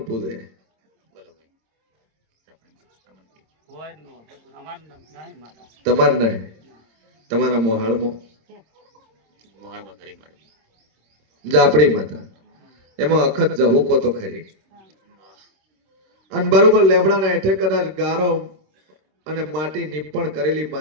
પૂજે તમાર નહીં તમારા મોહાળમાં જાપડી માતા એમાં અખત જહુકો તો ખરી અને બરોબર લેબડાના હેઠે કદાચ ગારો અને માટી નીપણ કરેલી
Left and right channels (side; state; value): left; late; 26 ms